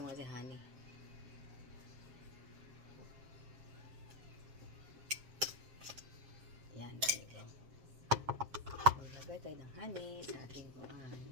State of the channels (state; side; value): late; left; 7.4 ms